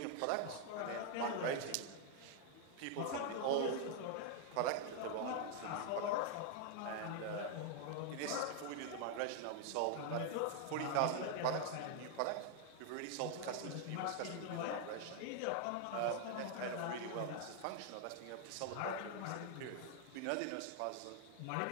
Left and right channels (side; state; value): both; different; correlation 0.00